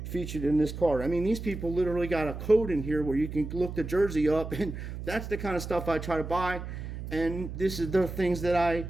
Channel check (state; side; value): noise; right; hum, 8 dB below the sound